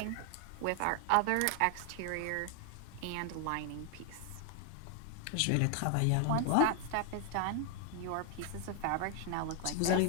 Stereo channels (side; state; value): both; different; correlation 0.00